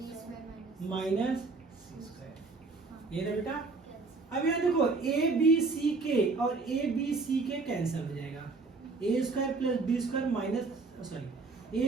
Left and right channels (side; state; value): left; quieter; 3.9 dB